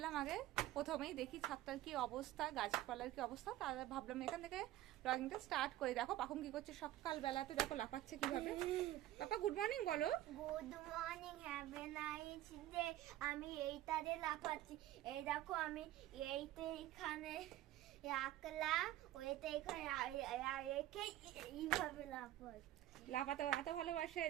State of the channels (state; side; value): quieter; left; 14.5 dB